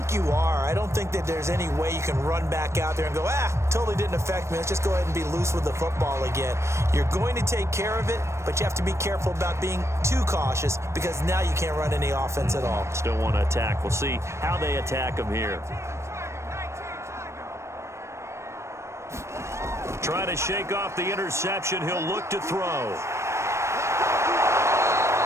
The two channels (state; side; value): late; left; 0.13 ms